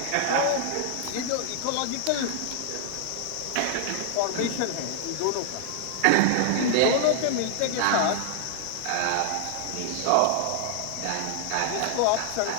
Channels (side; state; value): both; different; correlation 0.00